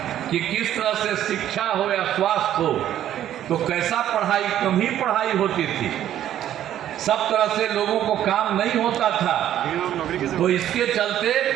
कि किस तरह से शिक्षा हो या स्वास्थ्य हो, तो कैसा पढ़ाई, कम ही पढ़ाई होती थी, सब तरह से लोगों को काम नहीं होता था। तो इसके चलते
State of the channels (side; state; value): left; quieter; 11.5 dB